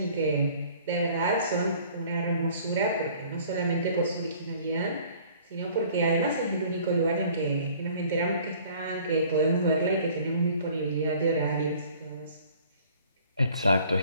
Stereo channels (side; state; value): both; inverted; correlation -0.53